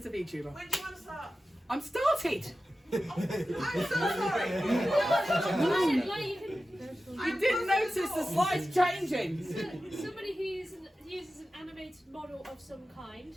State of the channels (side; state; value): both; normal; correlation 0.94